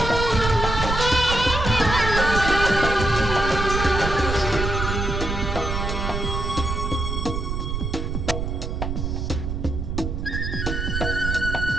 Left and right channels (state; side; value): noise; right; rumble, 3 dB below the sound